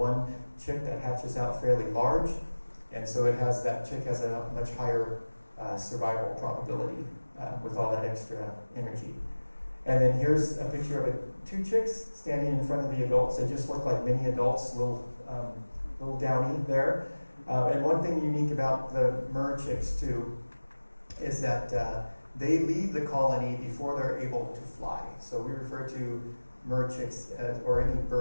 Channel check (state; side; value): inverted; both; correlation -1.00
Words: chick that hatches out fairly large, and so that chick has a much higher survival probability with all that extra energy. And then here's a picture of two chicks standing in front of the adults. They just look like mini adults, little downy there. And one thing unique about the Murre chicks too is that they leave the colony before they're able to fly. So we refer to Murre chicks or any